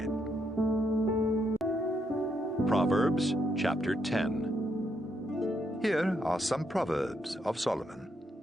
Proverbs chapter 10. Here are some Proverbs of Solomon.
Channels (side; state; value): both; normal; correlation 0.77